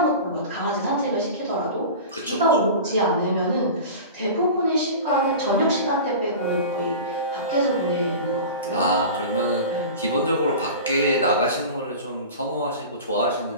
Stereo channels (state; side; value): inverted; both; correlation -0.33